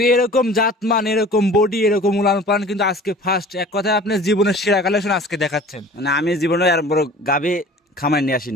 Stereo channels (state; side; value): normal; both; correlation 0.44